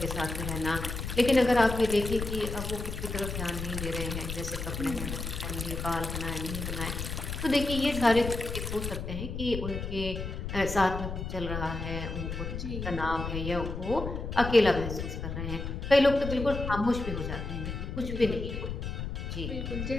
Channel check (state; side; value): noise; left; rumble, 5 dB below the sound